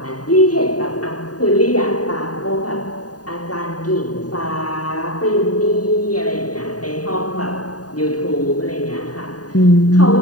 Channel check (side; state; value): right; late; 0.68 ms